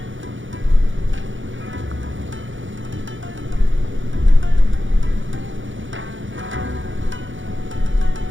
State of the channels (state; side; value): late; left; 0.56 ms